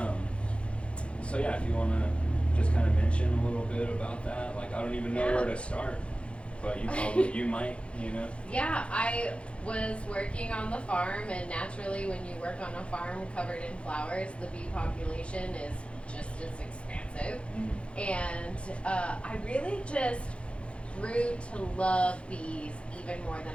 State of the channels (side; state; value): right; late; 0.060 ms